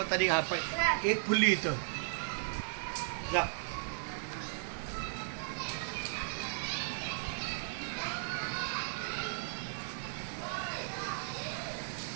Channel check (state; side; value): silent; left; 54 dB below the other